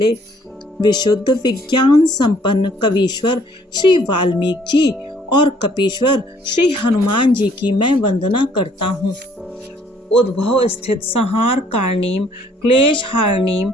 विशुद्ध विज्ञान संपन्न कवीश्वर श्री वाल्मीकि जी और कपीश्वर श्री हनुमान जी की मैं वंदना करता हूँ। उद्भव स्थित संहार कारणीम क्लेश हारणीम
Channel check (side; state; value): both; normal; correlation 0.62